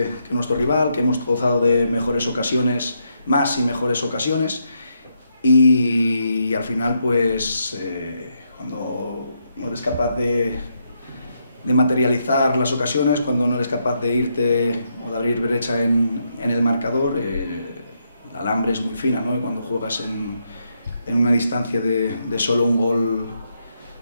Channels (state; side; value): inverted; both; correlation -0.78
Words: nuestro rival, que hemos gozado de mejores ocasiones, más y mejores ocasiones, y al final pues cuando no eres capaz de materializar las ocasiones, cuando no eres capaz de irte o de abrir brecha en el marcador, la alambre es muy fina, ¿no? Y cuando juegas en una distancia de solo un gol